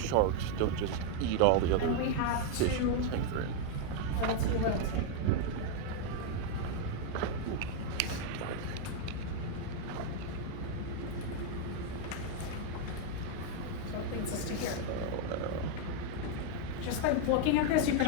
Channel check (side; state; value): both; different; correlation 0.00